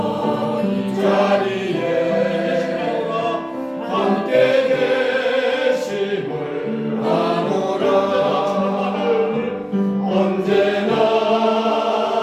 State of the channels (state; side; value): identical; both; correlation 1.00